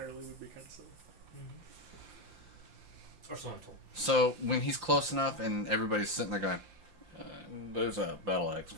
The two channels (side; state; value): left; late; 5.7 ms